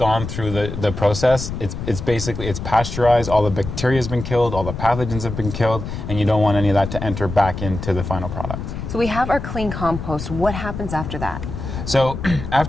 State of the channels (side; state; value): left; noise; rumble, 7 dB below the sound